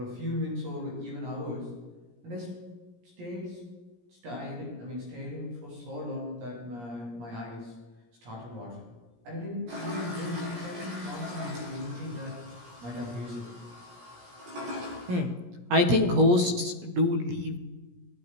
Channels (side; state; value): left; late; 17 ms